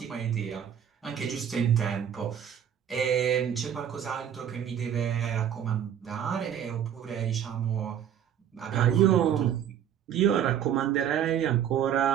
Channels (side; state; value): left; quieter; 9.4 dB